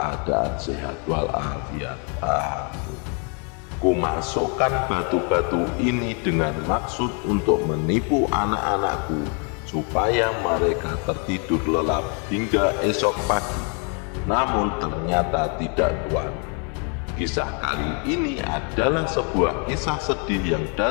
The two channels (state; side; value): quieter; right; 37.9 dB